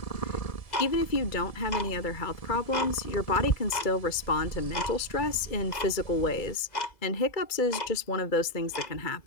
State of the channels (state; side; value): late; right; 2.2 ms